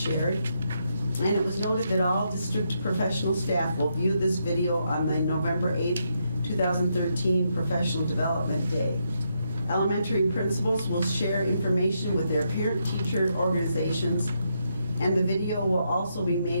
and it was noted that all district professional staff will view this video on the November 8, 2013 Professional Development Day. Elementary principals will share information with their parent-teacher organizations, and the video will also be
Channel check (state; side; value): inverted; both; correlation -0.79